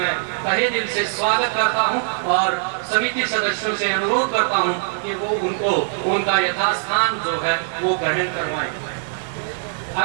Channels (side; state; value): left; silent; digital silence